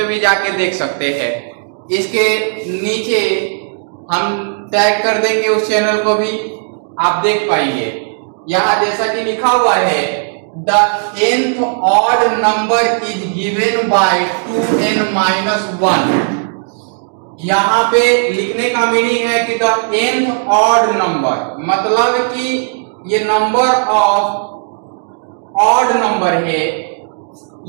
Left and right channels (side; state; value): left; silent; digital silence